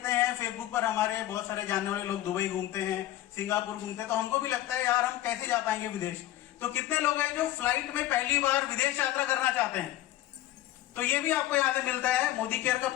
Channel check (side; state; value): right; quieter; 14.3 dB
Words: हैं फेसबुक पर हमारे बहुत सारे जानने वाले लोग दुबई घूमते हैं, सिंगापुर घूमते हैं, तो हमको भी लगता है यार हम कैसे जा पाएंगे विदेश। तो कितने लोग हैं जो फ्लाइट में पहली बार विदेश यात्रा करना चाहते हैं, तो ये भी आपको यहाँ से मिलता है। मोदी केयर का